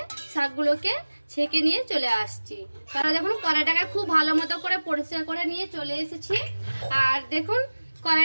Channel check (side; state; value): both; inverted; correlation -1.00